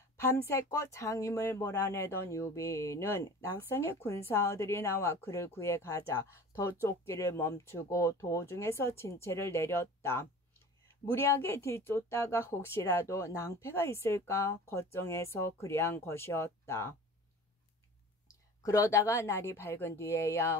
밤새껏 장임을 몰아내던 유비는 낙성의 군사들이 나와 그를 구해 가자 더 쫓기를 멈추고 도중에서 진체를 내렸다. 무리하게 뒤쫓다가 혹시라도 낭패가 있을까 걱정해서 그리한 것이었다. 그러다가 날이 밝은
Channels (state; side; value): normal; both; correlation 0.40